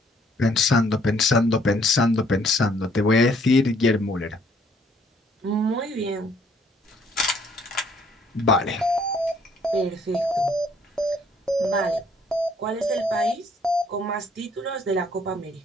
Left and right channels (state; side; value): normal; both; correlation 0.63